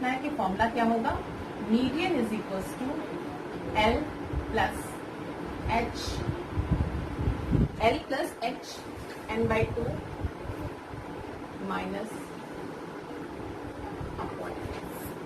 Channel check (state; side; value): identical; both; correlation 1.00